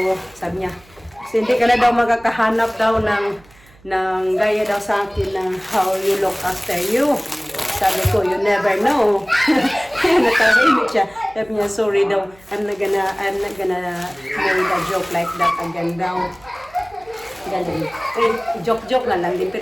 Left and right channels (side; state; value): right; noise; hum, 27 dB below the sound